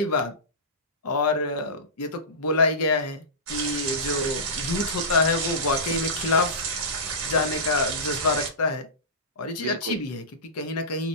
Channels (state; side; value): normal; both; correlation -0.20